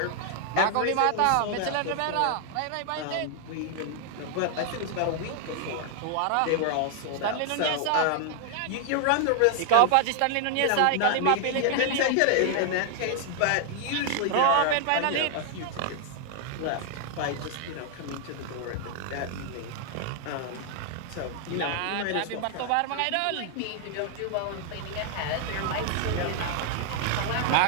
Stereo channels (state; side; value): different; both; correlation 0.00